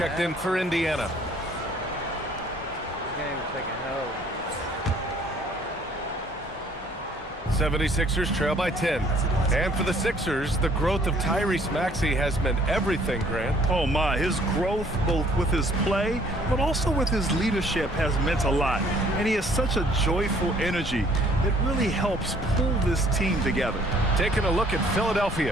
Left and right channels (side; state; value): both; normal; correlation 0.59